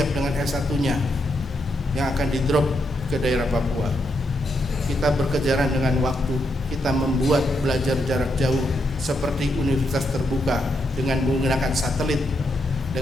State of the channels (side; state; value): both; normal; correlation 0.80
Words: dengan S1-nya yang akan di-drop ke daerah Papua. Kita berkejaran dengan waktu, kita membuat belajar jarak jauh seperti universitas terbuka dengan menggunakan satelit,